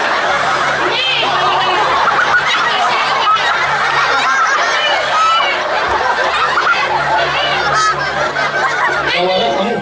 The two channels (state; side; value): identical; both; correlation 1.00